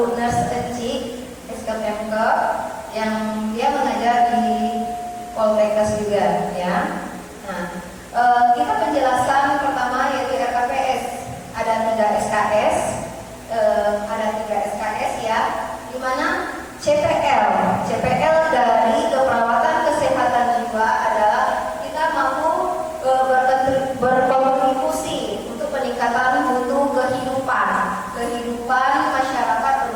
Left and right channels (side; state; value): both; identical; correlation 1.00